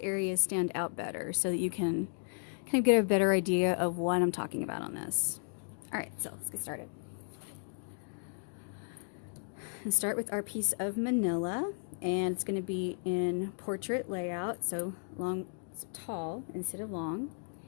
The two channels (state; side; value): silent; right; 55 dB below the other